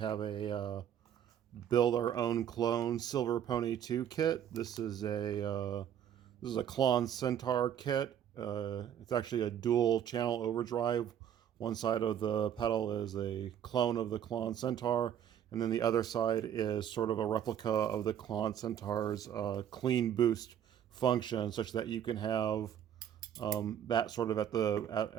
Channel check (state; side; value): quieter; left; 9.6 dB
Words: a build our own clone Silver Pony 2 kit. This is a Klon Centaur kit. It's actually a dual channel overdrive. One side of the pedal is a clone of the Klon Centaur, and then the other side is sort of a replica of the Klon Centaur's clean boost function, such that you can have that sort of